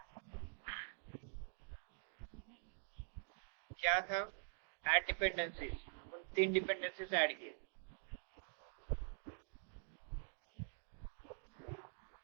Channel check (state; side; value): silent; left; digital silence